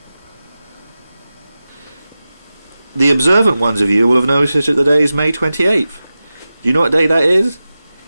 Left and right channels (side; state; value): both; inverted; correlation -0.94